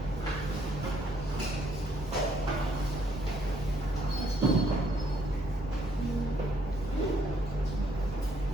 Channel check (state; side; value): normal; both; correlation 0.69